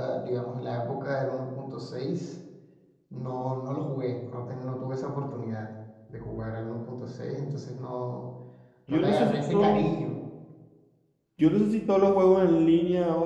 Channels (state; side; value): identical; both; correlation 1.00